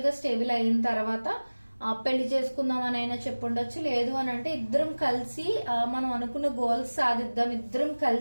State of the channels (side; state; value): both; inverted; correlation -1.00